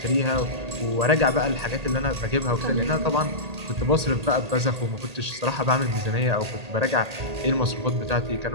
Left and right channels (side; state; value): left; late; 1.8 ms